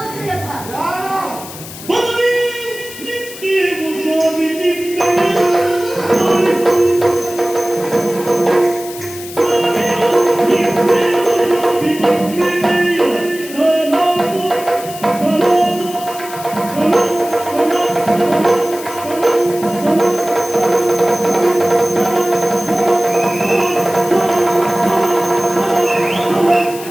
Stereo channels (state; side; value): noise; left; hiss, 14 dB below the sound